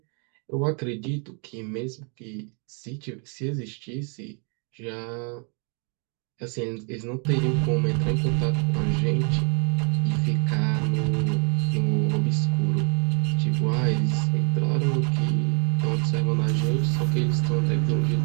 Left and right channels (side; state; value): left; quieter; 38.7 dB